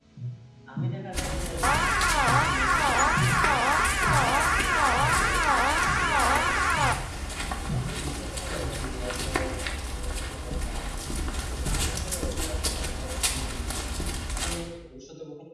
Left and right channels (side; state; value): both; identical; correlation 1.00